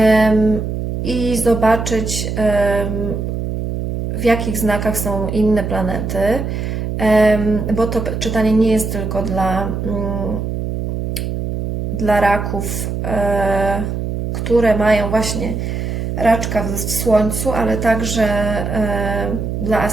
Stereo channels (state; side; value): noise; right; hum, 3 dB below the sound